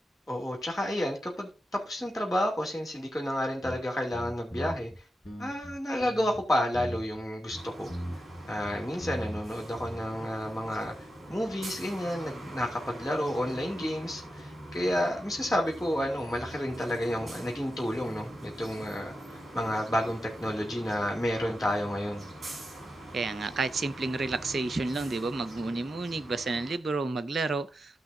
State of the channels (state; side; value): normal; both; correlation 0.89